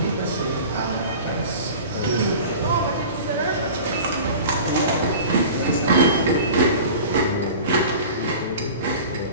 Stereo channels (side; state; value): both; inverted; correlation -0.38